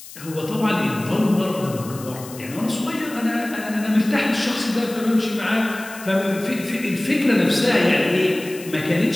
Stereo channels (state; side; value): noise; left; hiss, 16 dB below the sound